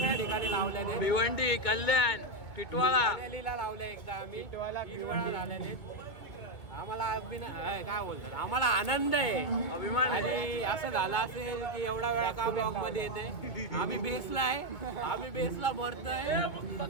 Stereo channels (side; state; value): right; late; 2.5 ms